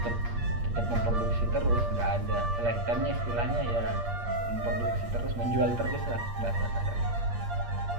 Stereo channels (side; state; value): left; late; 8.5 ms